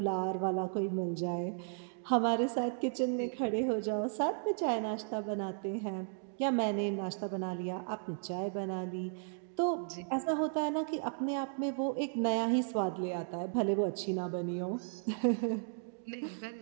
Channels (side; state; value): left; silent; digital silence